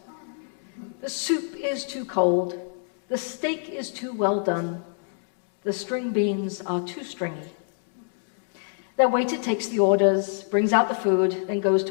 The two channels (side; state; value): right; silent; digital silence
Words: The soup is too cold, the steak is too well done, the string beans are too stringy. Their waiter takes the orders, brings out the food, then goes